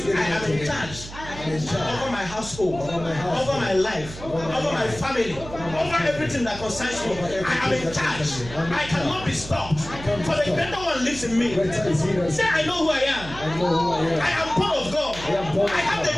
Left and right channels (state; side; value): noise; right; hum, 13 dB below the sound